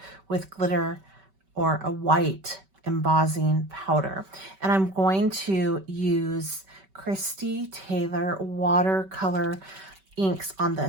with glitter or a white embossing powder. And I'm going to use Christy Taylor watercolor inks on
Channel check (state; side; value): late; left; 5.2 ms